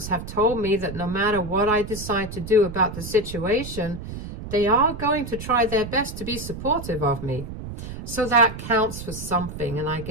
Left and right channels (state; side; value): noise; right; rumble, 9 dB below the sound